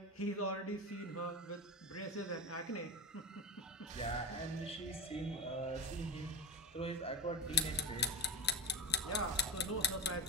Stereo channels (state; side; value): normal; both; correlation 0.21